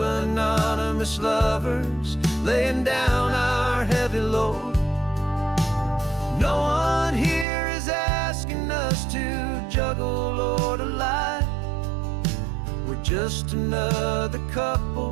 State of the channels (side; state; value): left; drops out; at 7.5 s